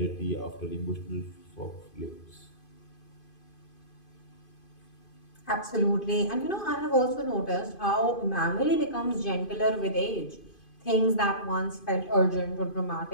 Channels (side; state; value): right; late; 2.5 ms